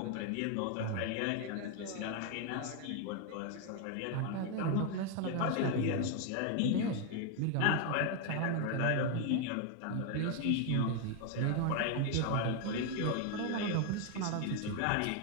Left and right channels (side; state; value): both; different; correlation 0.01